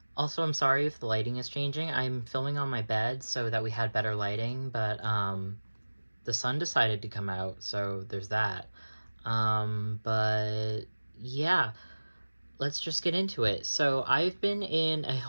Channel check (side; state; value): both; inverted; correlation -1.00